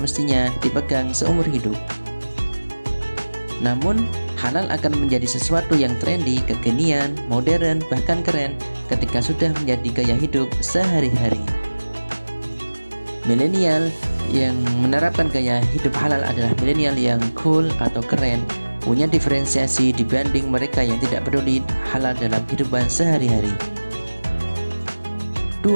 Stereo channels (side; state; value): both; inverted; correlation -1.00